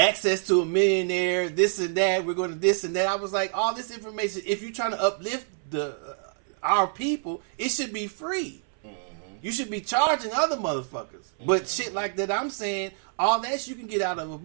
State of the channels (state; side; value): silent; left; 60 dB below the other